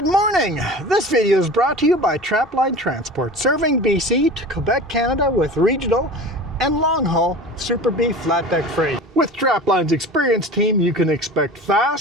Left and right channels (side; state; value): both; normal; correlation 0.36